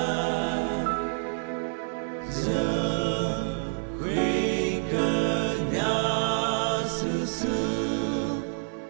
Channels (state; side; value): silent; left; digital silence